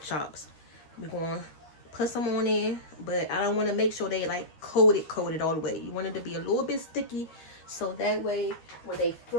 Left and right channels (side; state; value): right; late; 13 ms